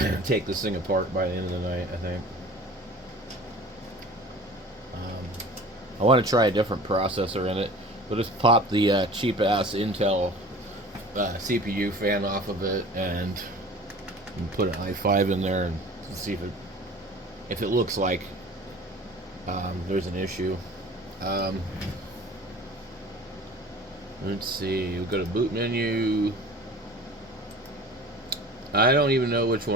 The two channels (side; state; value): both; normal; correlation 0.43